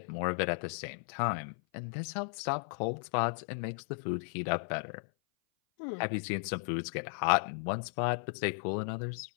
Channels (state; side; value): silent; right; 54 dB below the other